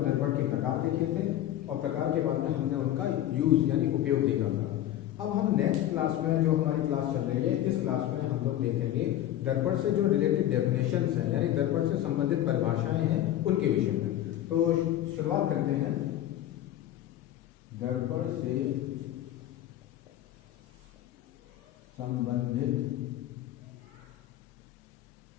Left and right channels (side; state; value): right; quieter; 12.8 dB